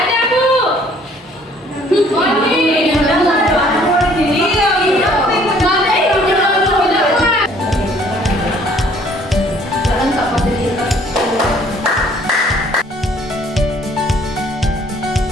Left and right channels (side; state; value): both; normal; correlation 0.58